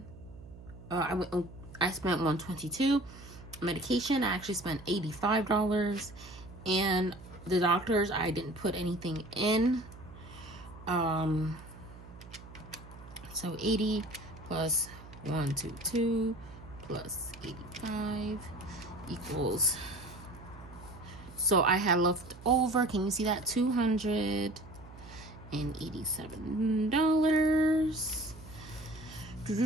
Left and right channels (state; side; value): noise; right; hum, 17 dB below the sound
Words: I spent 122. Medication, I actually spent $85. And the doctors, I didn't put anything in. So 80 plus 122 plus 85 equals, so I had left over, can you see that,